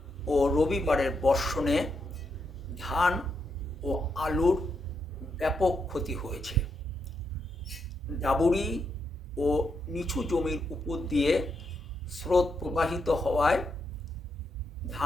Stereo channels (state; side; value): normal; both; correlation 0.81